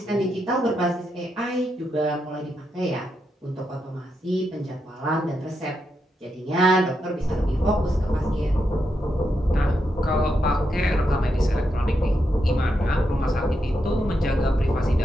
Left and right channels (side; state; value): both; normal; correlation 0.83